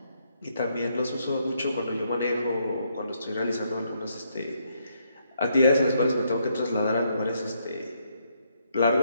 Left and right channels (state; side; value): inverted; both; correlation -0.75